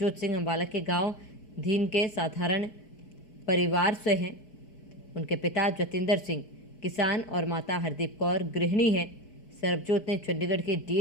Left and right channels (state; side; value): late; right; 4.6 ms